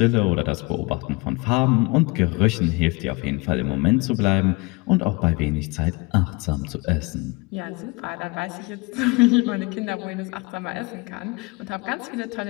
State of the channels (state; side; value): quieter; right; 26.2 dB